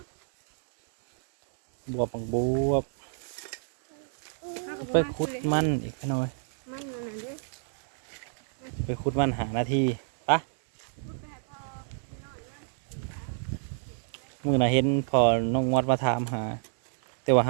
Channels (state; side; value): silent; left; digital silence